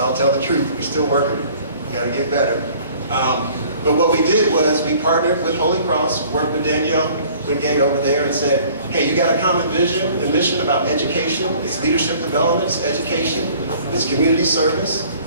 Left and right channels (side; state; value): both; inverted; correlation -0.52